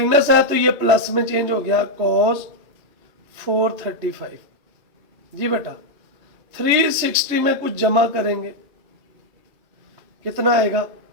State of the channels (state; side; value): late; left; 3.4 ms